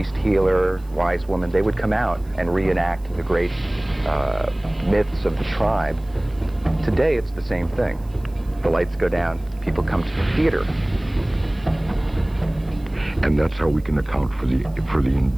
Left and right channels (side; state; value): right; noise; hiss, 29 dB below the sound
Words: healer, wise woman, they would come out and reenact the great myths of the tribe. Today, it's the same thing. The lights go down, people come to the theater. And that's how we can account for the